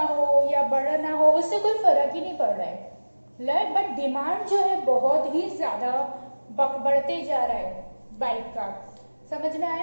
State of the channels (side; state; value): both; inverted; correlation -1.00